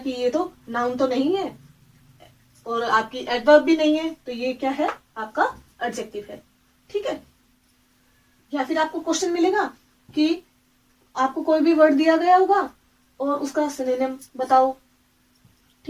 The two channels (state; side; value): identical; both; correlation 1.00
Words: ये तो नाउन तो नहीं है और आपकी एडवर्ब भी नहीं है, तो ये क्या है, आपका एडजेक्टिव है। ठीक है। या फिर आपको क्वेश्चन मिलेगा कि आपको कोई भी वर्ड दिया गया होगा और उसका सिनोनिम बताओ।